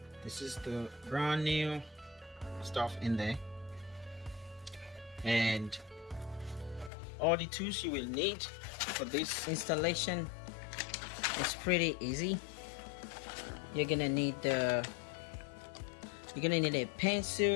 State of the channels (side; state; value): right; drops out; at 6.9 s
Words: this is the brand new stuff in there, and all the tools you will need for this installation is pretty easy. You're gonna need a